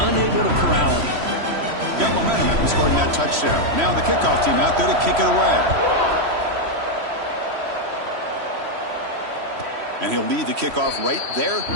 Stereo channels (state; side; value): late; left; 3.1 ms